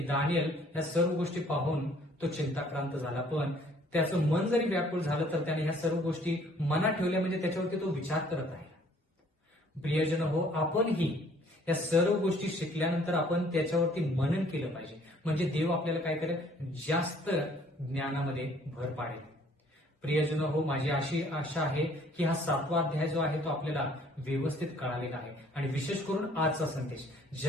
दानियल या सर्व गोष्टी पाहून तो चिंताक्रांत झाला, पण त्याचं मन जरी व्याकुळ झालं तर त्याने ह्या सर्व गोष्टी मनात ठेवल्या, म्हणजे त्याच्यावरती तो विचार करत आहे. प्रियजन हो, आपणही या सर्व गोष्टी शिकल्यानंतर आपण त्याच्यावरती मनन केलं पाहिजे, म्हणजे देव आपल्याला काय करेल, जास्त ज्ञानामध्ये भर पाडेल. प्रियजन हो, माझी अशी आशा आहे की हा 7वा अध्याय जो आहे तो आपल्याला व्यवस्थित कळालेला आहे, आणि विशेष करून आजचा संदेश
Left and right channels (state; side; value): normal; both; correlation 0.59